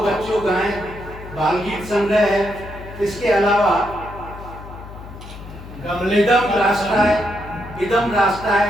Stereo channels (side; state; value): left; noise; hum, 14 dB below the sound